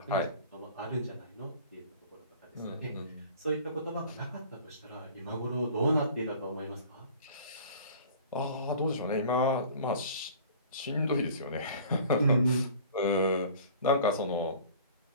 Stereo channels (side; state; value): both; inverted; correlation -0.46